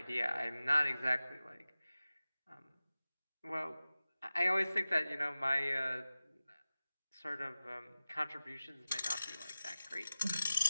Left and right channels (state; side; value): inverted; both; correlation -0.97